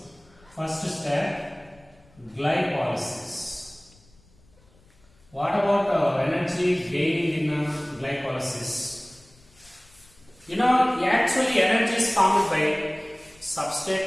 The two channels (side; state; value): left; noise; rumble, 29 dB below the sound